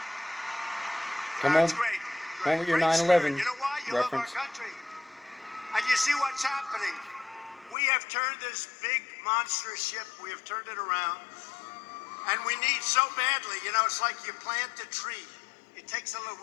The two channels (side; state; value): right; drops out; at 7.8 s